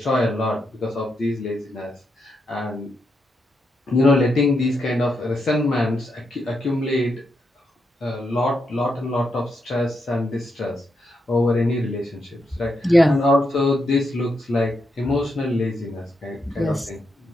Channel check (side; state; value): both; normal; correlation 0.82